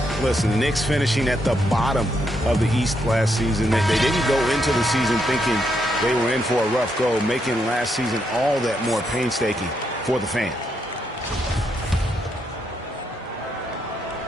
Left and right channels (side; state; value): both; normal; correlation 0.78